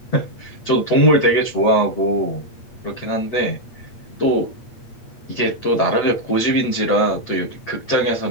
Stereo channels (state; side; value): late; right; 8.5 ms